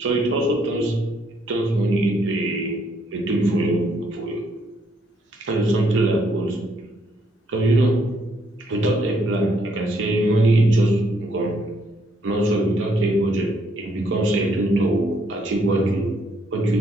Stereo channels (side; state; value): both; normal; correlation 0.71